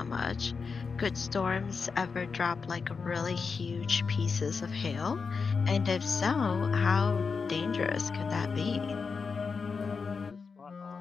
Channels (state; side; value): quieter; right; 5.1 dB